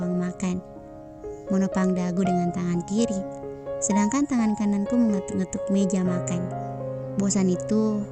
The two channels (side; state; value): both; identical; correlation 1.00